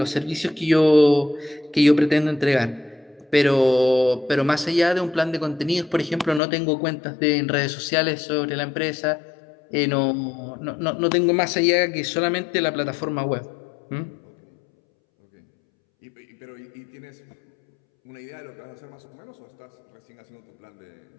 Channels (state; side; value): drops out; right; at 6.4 s